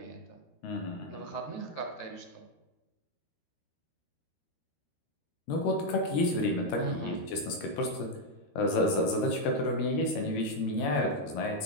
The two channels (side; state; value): right; late; 13 ms